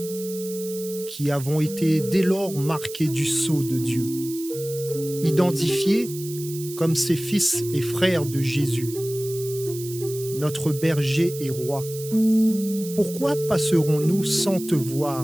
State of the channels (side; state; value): right; noise; hiss, 13 dB below the sound